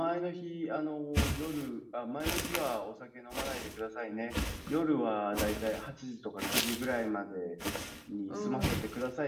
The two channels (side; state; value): both; identical; correlation 1.00